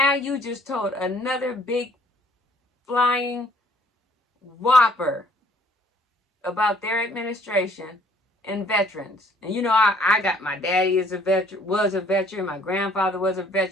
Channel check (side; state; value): both; normal; correlation 0.60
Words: you just told another big flying whopper about their administration and veterans. And you know, I got my daddy was a veteran, my grandfather was a